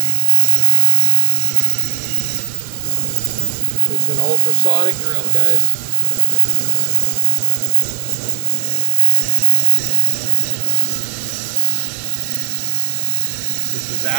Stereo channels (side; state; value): left; silent; digital silence